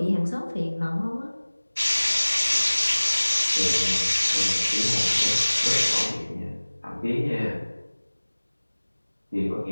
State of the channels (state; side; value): inverted; both; correlation -1.00